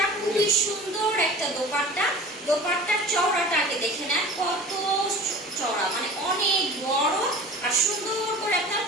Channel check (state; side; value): normal; both; correlation 0.40